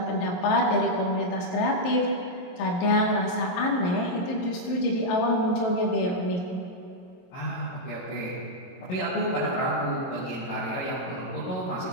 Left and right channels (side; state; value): right; late; 23 ms